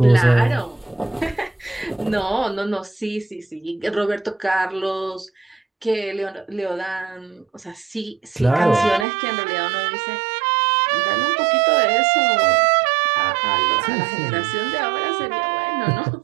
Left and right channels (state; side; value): drops out; left; at 9.1 s